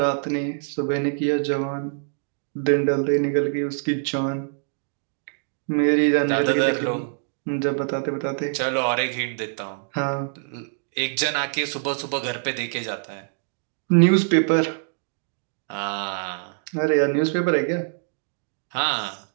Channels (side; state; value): left; silent; digital silence